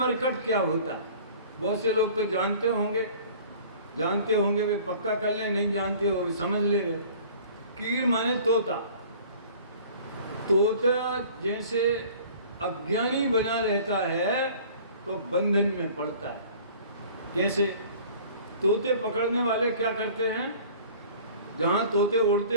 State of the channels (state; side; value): inverted; both; correlation -0.47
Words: क्या होता है? बहुत से लोग तो जानते होंगे, वे पक्का कर ले, नहीं जानते हो वे समझ ले रहे। कीर माने तोता। तोता जैसे अज्ञानी बना रहता है तो बंधन में पड़ता है। कैसे? तोते पकड़ने वाले क्या करते हैं, जहाँ तोते उड़ते